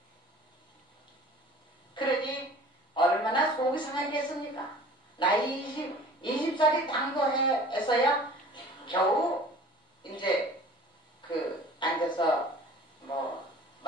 그러니 얼마나 속이 상하겠습니까? 나이 20살이 당도해서야 겨우 이제 그 앉아서 뭐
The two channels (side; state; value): both; normal; correlation 0.46